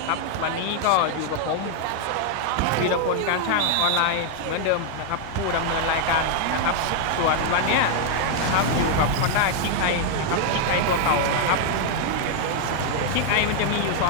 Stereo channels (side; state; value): both; different; correlation 0.00